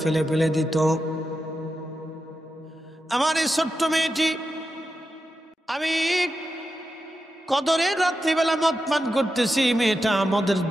ফেলে ফেলে দিত। আমার এই ছোট্ট মেয়েটি, আমি কদরের রাত্রিবেলা মদ পান করতেছি, মেয়েটা মদের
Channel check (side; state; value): both; normal; correlation 0.89